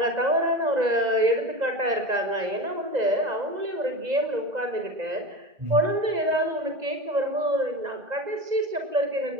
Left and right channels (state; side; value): late; left; 2.0 ms